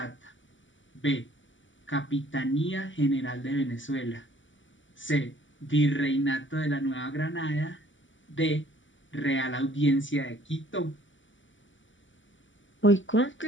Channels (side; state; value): right; late; 0.55 ms